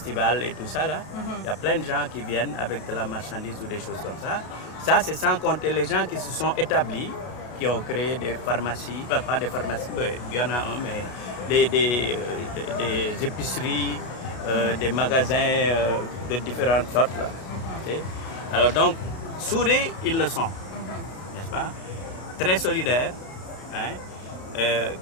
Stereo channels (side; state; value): right; late; 33 ms